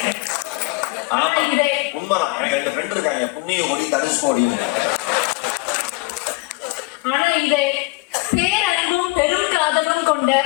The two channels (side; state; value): right; quieter; 24.7 dB